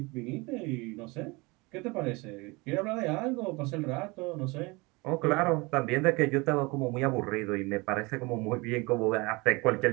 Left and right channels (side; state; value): left; quieter; 25.4 dB